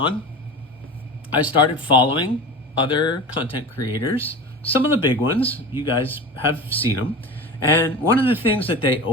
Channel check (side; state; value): both; normal; correlation 0.31